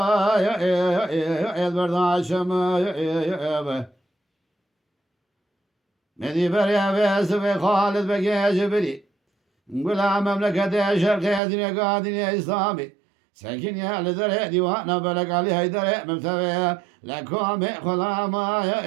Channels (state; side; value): drops out; left; at 11.4 s